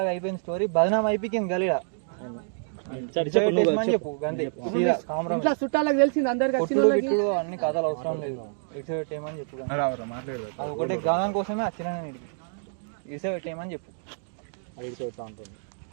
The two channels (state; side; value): silent; left; digital silence